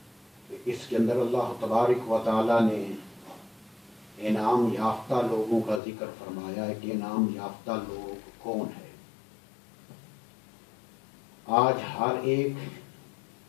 اس کے اندر اللہ تبارک و تعالیٰ نے انعام یافتہ لوگوں کا ذکر فرمایا ہے کہ انعام یافتہ لوگ کون ہے. آج ہر ایک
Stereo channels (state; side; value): drops out; right; at 5.8 s